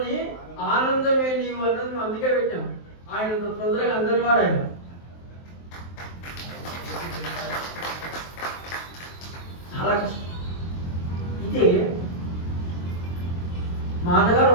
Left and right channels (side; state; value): right; late; 23 ms